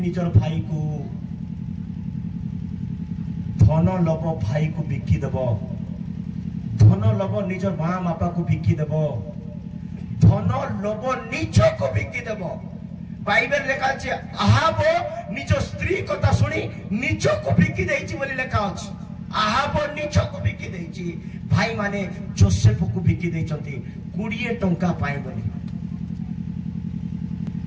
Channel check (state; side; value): identical; both; correlation 1.00